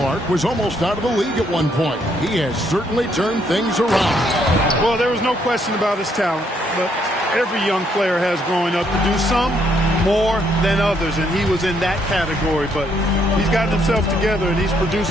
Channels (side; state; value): both; normal; correlation 0.71